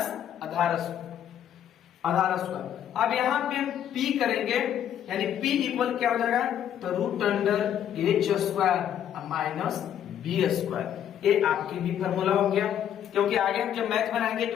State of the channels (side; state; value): right; quieter; 10.0 dB